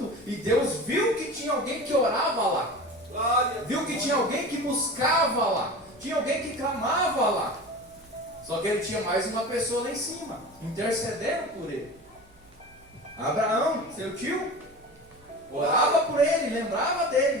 e Deus viu que tinha alguém que orava lá. Viu que tinha alguém que buscava lá. Tinha alguém que clamava lá. Só que ele tinha mais uma pessoa lá em cima, intercedendo por ele. Abraão, seu tio, orava por ele, lembrava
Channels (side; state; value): right; noise; hum, 29 dB below the sound